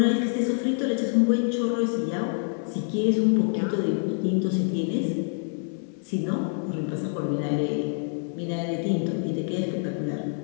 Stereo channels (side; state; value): right; silent; 61 dB below the other